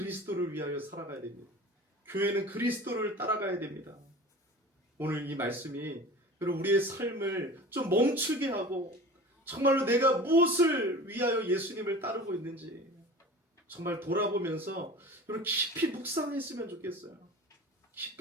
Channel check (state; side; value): normal; both; correlation 0.37